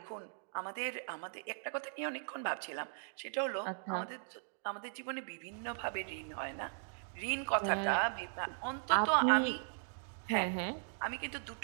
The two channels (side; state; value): left; silent; digital silence